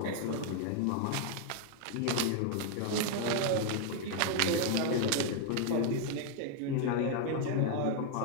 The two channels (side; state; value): both; different; correlation 0.00